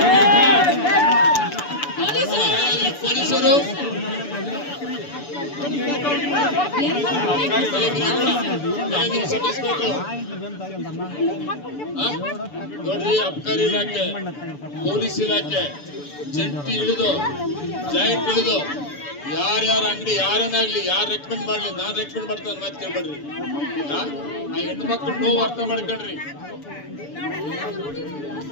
ಪೊಲೀಸರು ನೋಡ್ರಿ, ಅಬ್ಕಾರಿ ಇಲಾಖೆ, ಪೊಲೀಸ್ ಇಲಾಖೆ ಜಂಟಿ ಇಳಿದು ಜಾಯಿಂಟ್ ಇಳಿದು ಯಾರ್ಯಾರ ಅಂಗಡಿ ಯಾರನ್ನಾಗ್ಲಿ ಯಾರು ರೆಕಮೆಂಡ್ ಮಾಡ್ಲಿ, ನಾನ್ ರೆಕಮೆಂಡ್ ಮಾಡ್ತಾನೆ ಮಾತು ಕೇಳ್ಬೇಡ್ರಿ. ಆ ಹೆಣ್ಣು ಮಕ್ಕಳು ನೋವು ಅರ್ಥ ಮಾಡ್ಕೊಳ್ರಿ.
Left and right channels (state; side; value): late; right; 6.9 ms